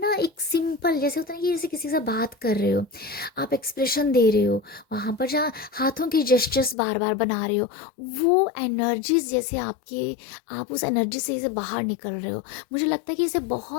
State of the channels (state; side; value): drops out; right; at 6.8 s